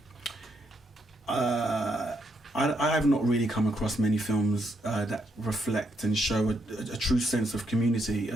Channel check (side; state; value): both; normal; correlation 0.77